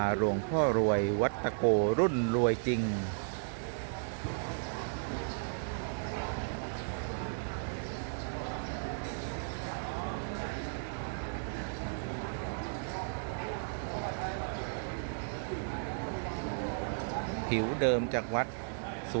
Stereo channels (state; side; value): silent; left; digital silence